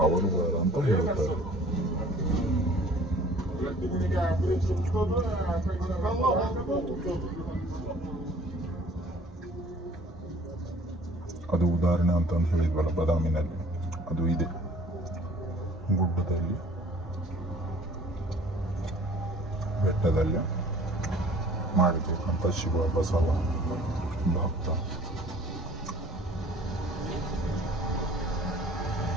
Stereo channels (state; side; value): normal; both; correlation 0.51